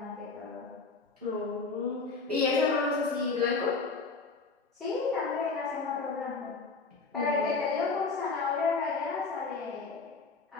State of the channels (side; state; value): right; quieter; 4.2 dB